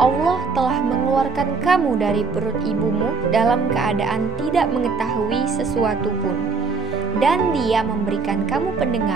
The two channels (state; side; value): quieter; left; 4.5 dB